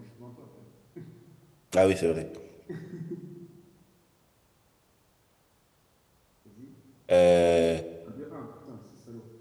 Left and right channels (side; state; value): both; identical; correlation 1.00